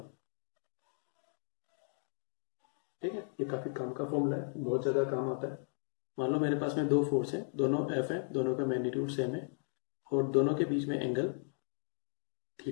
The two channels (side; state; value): right; silent; digital silence